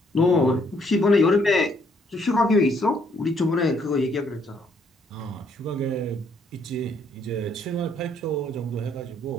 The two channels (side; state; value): both; normal; correlation 0.68